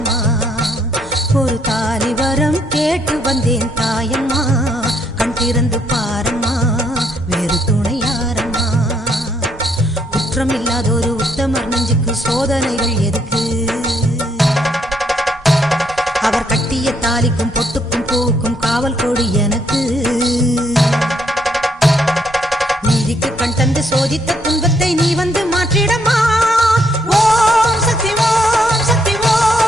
ஒரு தாலி வரம் கேட்டு வந்தேன் தாயம்மா கண் திறந்து பாரம்மா வேறு துணையாரம்மா. குற்றம் இல்லாத ஒரு உத்தமர் நெஞ்சுக்கு சோதனைகள் எதுக்கு? அவர் கட்டிய தாலிக்கும் பொட்டுக்கும் பூவுக்கும் காவல் கொடு எனக்கு. நீதிக்கு கண் தந்து சோதித்த துன்பத்தை நீ வந்து மாற்றிடமா. ஓம் சக்தி ஓம் சக்தி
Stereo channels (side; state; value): both; normal; correlation 0.72